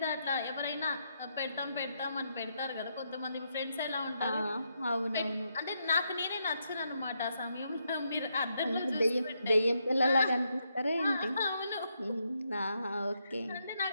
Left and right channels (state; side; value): inverted; both; correlation -0.79